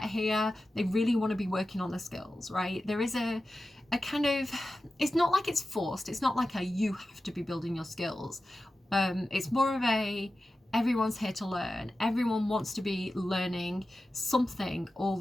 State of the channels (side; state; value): both; normal; correlation 0.93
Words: here, they really want to be working on the skills, right? There is a kind of, it's not like it's forced. It's not like a, you have to be building your skills. It's more of a, everyone's here to learn. Everyone wants to be learning something all